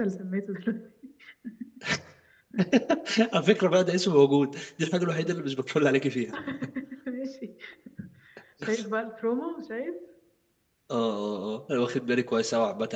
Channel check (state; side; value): identical; both; correlation 1.00